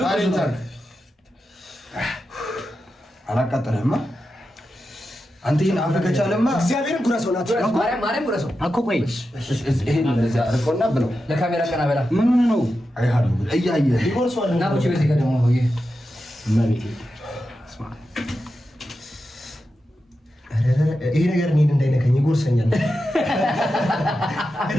አላቃጠለህማ አንተ ይሄን አፈከቻለማ እግዚአብሔርን ጉረሶ ናት ማርያም ጉረሶ አኮ ቆይ ይሄን እንደዚህ አርቆና ብለው ለካሜራ ቀና በላ ምን ነው አይሃሉ እያየ ይጎርሷል እና ብቻ በዚህ ጋር ደግሞ ነው ይሄ መቤቴ ስማ ይሄ ነገር እኔን እንዳይነካኝ ይጎርሰኛል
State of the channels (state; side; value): normal; both; correlation 0.90